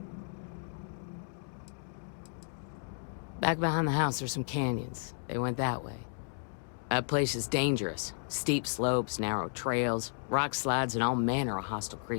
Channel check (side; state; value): right; silent; digital silence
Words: Back behind the house, there's some canyons. They went that way. That place is dangerous. Steep slopes, narrow trails, rock slides, and all manner of hostile